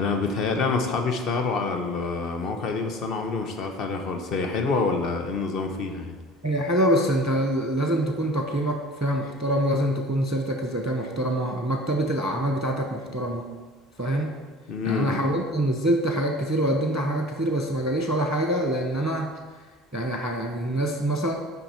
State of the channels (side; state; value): both; normal; correlation 0.43